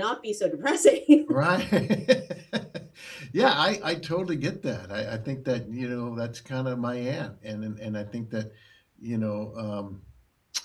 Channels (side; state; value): both; identical; correlation 1.00